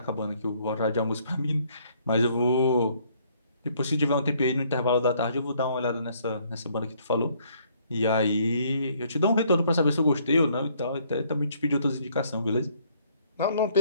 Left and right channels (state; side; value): inverted; both; correlation -0.65